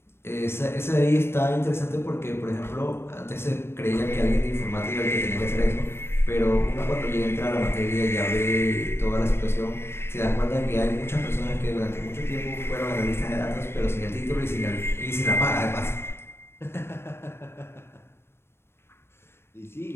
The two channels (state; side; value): late; right; 0.12 ms